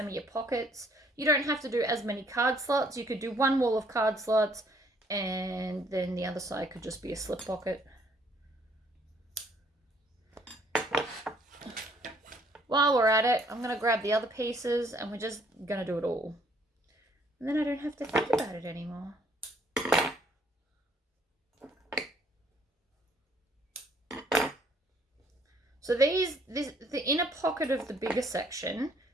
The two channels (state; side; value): normal; both; correlation 0.64